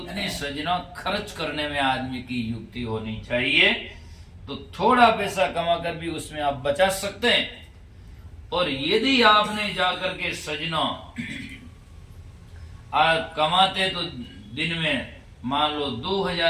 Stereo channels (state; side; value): identical; both; correlation 1.00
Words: सजना खर्च करने में आदमी की युक्ति होनी चाहिए। तो थोड़ा पैसा कमाकर भी उसमें आप बचा सकते हैं। और यदि आपने जाकर के सजना आप कमाते तो दिन में मान लो